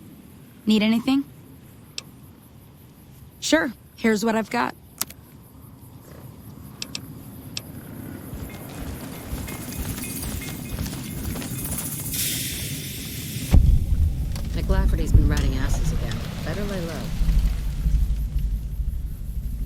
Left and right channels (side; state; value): both; identical; correlation 1.00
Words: Need anything? Sure. Here's what I've got. McLafferty's been riding asses again. Better lay low.